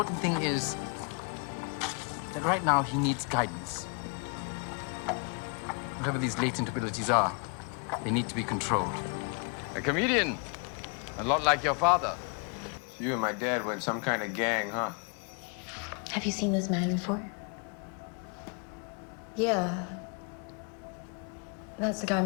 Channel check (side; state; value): right; quieter; 37.7 dB